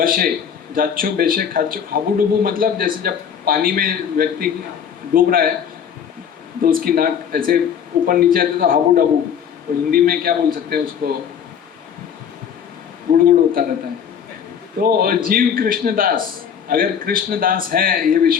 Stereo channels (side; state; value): right; quieter; 8.0 dB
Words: जाच्छो बेचे खाच्चो हाबू डुबू, मतलब जैसे जब पानी में व्यक्ति डूब रहा है तो उसकी नाक ऐसे ऊपर नीचे आती तो हाबू डबू, तो हिंदी में क्या बोल सकते हैं उसको, गुड़गुड़ होता रहता है। तो जीव कृष्णदास, अगर कृष्णदास है ये